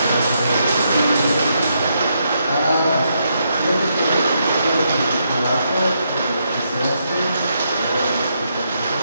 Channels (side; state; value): both; inverted; correlation -0.79